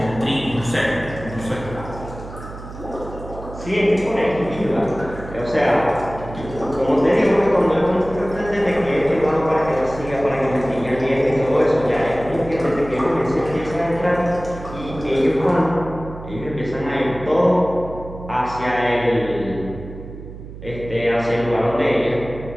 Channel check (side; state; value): right; noise; hum, 13 dB below the sound